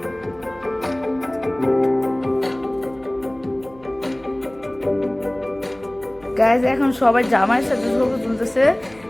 গাইস এখন সবাই জামাইয়ের সাথে ছবি তুলতেছে।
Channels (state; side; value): noise; right; hum, 25 dB below the sound